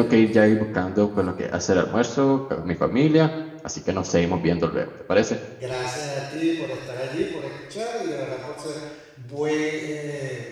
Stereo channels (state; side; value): identical; both; correlation 1.00